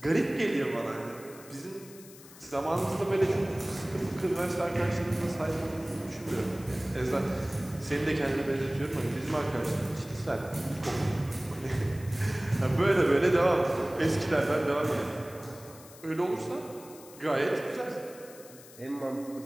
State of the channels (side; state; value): left; noise; hiss, 20 dB below the sound